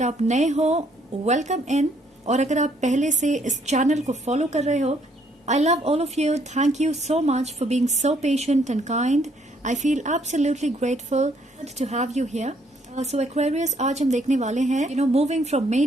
आप नए हो, welcome in. और अगर आप पहले से इस चैनल को फॉलो कर रहे हो, I love all of you. Thank you so much for being so patient and kind. I feel absolutely grateful to have you here. So Aquarius, आज हम देखने वाले हैं, moving from May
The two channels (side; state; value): both; normal; correlation 0.68